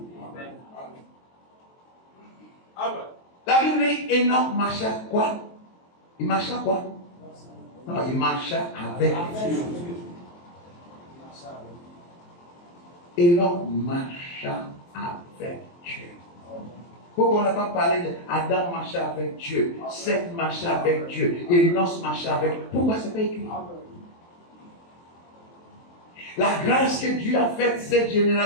La Bible dit Enoch marcha quoi? Il marcha quoi? Non, il marcha avec Dieu. Enoch marcha avec Dieu. Pourquoi on n'a pas parlé d'Adam marcha avec Dieu, Seth marcha avec Dieu, Enoch marcha avec Dieu? Pourquoi c'est pas écrit? La grâce que Dieu a faite cette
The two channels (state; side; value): late; right; 23 ms